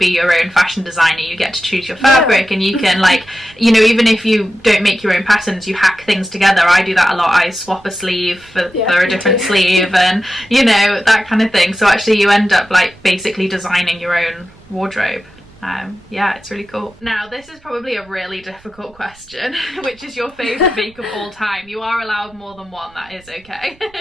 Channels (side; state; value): right; noise; rumble, 28 dB below the sound